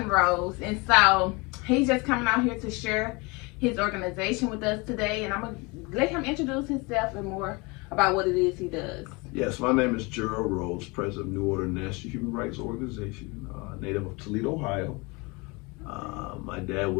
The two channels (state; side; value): quieter; right; 27.0 dB